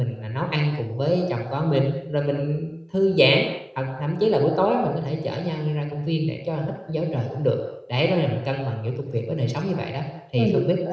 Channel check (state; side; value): identical; both; correlation 1.00